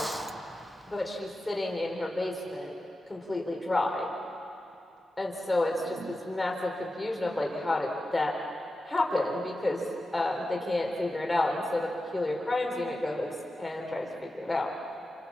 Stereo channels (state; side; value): normal; both; correlation 0.92